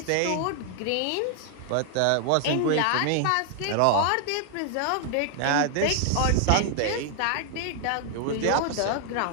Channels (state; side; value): different; both; correlation 0.00